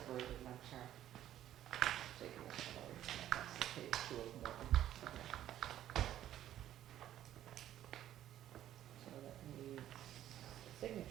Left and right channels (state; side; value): quieter; left; 12.0 dB